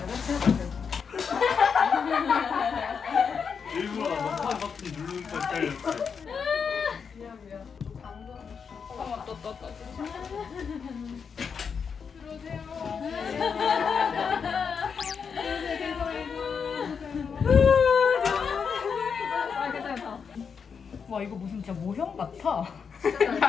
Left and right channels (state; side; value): quieter; right; 6.2 dB